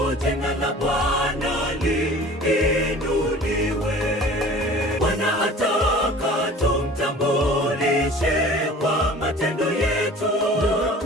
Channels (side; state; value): both; normal; correlation 0.44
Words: jina la Bwana liinuliwe. Bwana ataka tumtambulishe kwa matendo yetu,